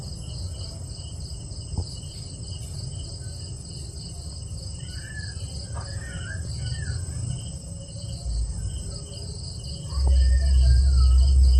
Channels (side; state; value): both; identical; correlation 1.00